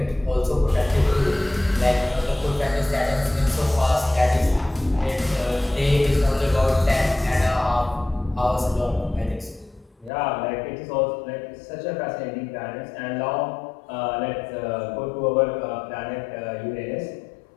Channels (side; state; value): right; drops out; at 10.1 s